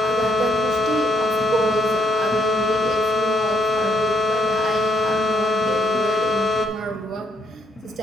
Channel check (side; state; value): both; normal; correlation 0.70